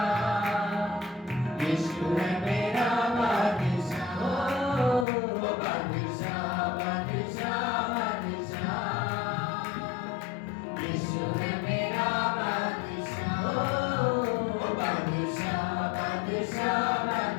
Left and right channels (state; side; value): drops out; right; at 5.1 s